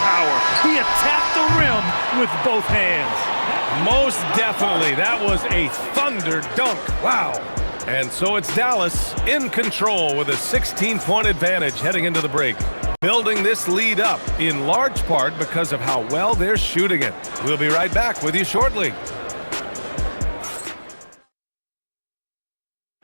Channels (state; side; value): inverted; both; correlation -1.00